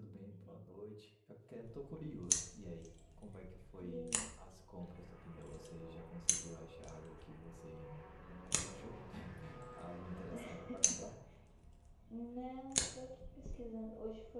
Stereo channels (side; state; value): both; identical; correlation 1.00